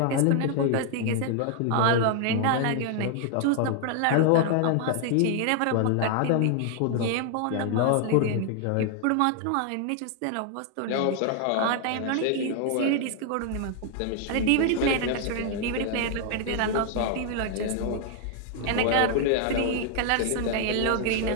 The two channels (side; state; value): both; different; correlation 0.00